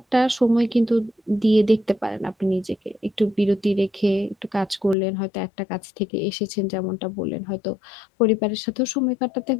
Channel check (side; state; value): right; drops out; at 5.0 s